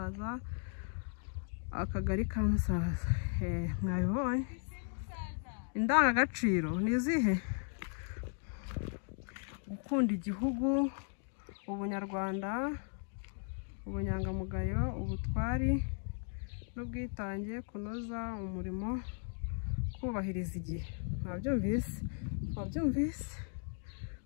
Akagari ka Musaza. Mwabibonye? Indangagaciro ni izihe? Gukunda igihugu, ubunyarwanda, ubunyangamugayo, ubutwari n'ubwitange, kunoza umurimo, kubahiriza igihe. Mwabyumvise?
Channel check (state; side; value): silent; right; 53 dB below the other